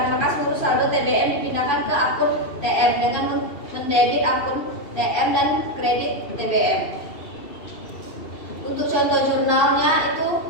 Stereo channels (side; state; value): right; late; 2.7 ms